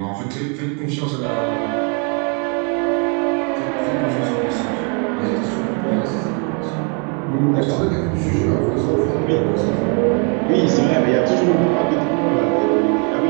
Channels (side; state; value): left; quieter; 37.1 dB